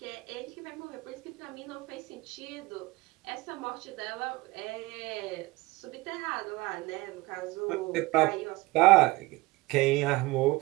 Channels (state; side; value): quieter; left; 21.4 dB